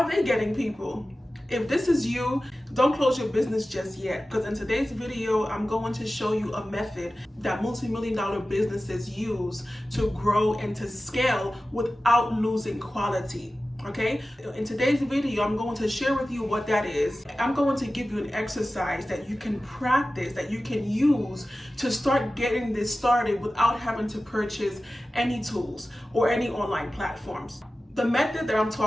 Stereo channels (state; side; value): normal; both; correlation 0.95